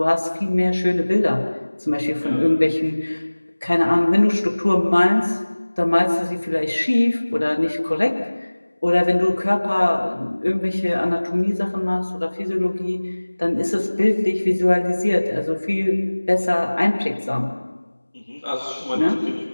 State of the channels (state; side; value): inverted; both; correlation -1.00